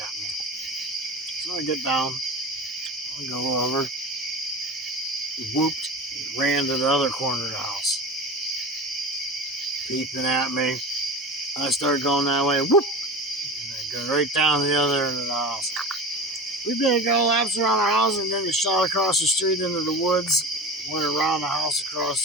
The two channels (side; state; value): both; normal; correlation 0.31